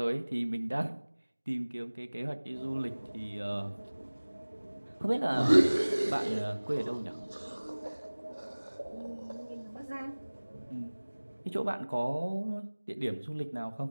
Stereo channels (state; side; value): inverted; both; correlation -1.00